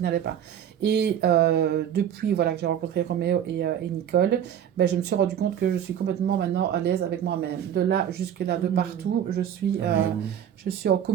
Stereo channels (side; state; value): left; quieter; 9.6 dB